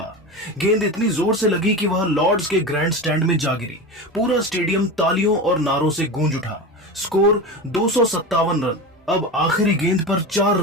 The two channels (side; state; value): both; normal; correlation 0.25